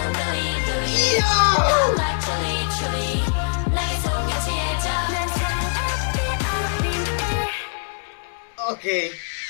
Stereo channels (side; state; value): right; silent; digital silence